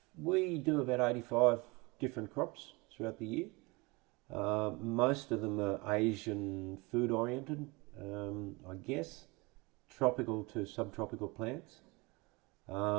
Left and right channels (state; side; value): quieter; left; 25.7 dB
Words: we do about 85 different crops throughout the year. Most of them are Asian food oriented, I guess, tropical to subtropical plants.